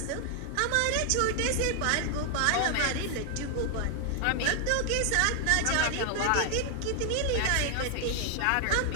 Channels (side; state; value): both; different; correlation 0.00